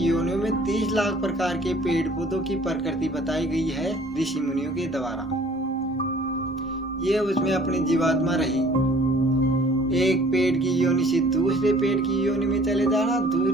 में 30 लाख प्रकार के पेड़ पौधों की प्रकृति बताई गई है ऋषि मुनियों के द्वारा। ये उसमें अपनी जीवात्मा रही। एक पेड़ की योनि से दूसरे पेड़ की योनि में चले जाना,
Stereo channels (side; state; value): both; normal; correlation 0.54